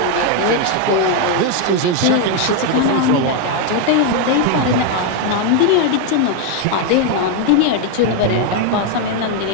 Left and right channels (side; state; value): both; different; correlation 0.01